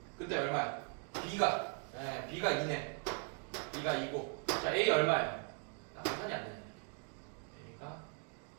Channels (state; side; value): quieter; left; 39.3 dB